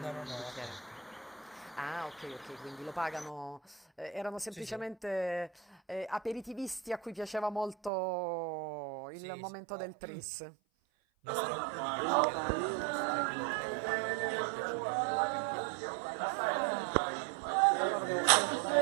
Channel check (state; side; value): drops out; left; at 7.9 s